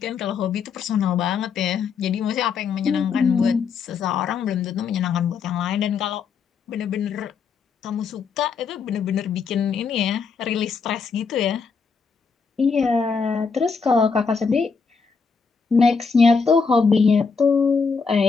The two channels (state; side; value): quieter; right; 5.4 dB